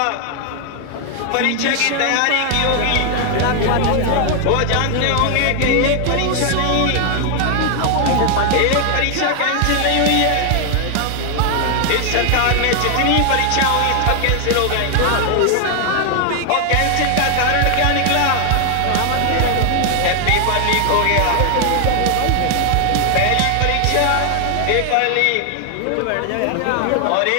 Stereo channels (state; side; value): different; both; correlation 0.00